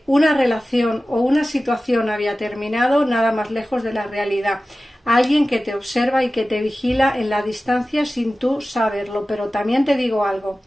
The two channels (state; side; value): normal; both; correlation 0.96